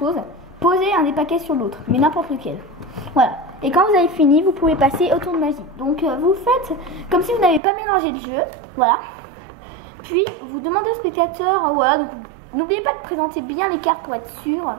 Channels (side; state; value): left; drops out; at 7.6 s